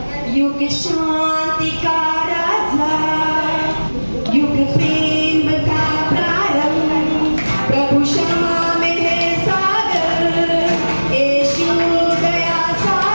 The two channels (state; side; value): inverted; both; correlation -1.00